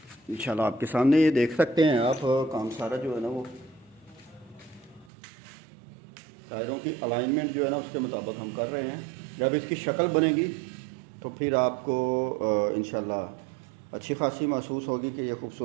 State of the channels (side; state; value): left; drops out; at 5.1 s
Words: इंशाल्लाह आपके सामने ये देख सकते हैं आप, काम सारा जो है ना वो टायरों की अलाइनमेंट जो है ना उसके मुताबिक हम कर रहे हैं। जब इसकी शक्ल बनेगी तो फिर आपको इंशाल्लाह अच्छी खासी महसूस होगी कि ये